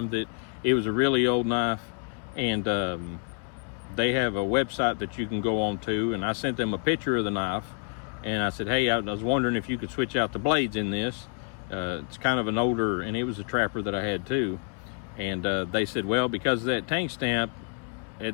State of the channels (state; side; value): quieter; right; 39.5 dB